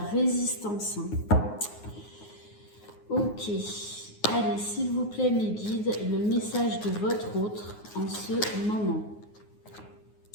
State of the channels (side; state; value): right; late; 9.5 ms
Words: résistance, hein. Ok, allez, s'il vous plaît mes guides, le message de votre autre en ce moment.